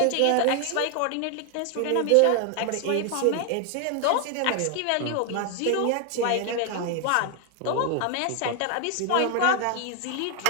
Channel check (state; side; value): different; both; correlation 0.00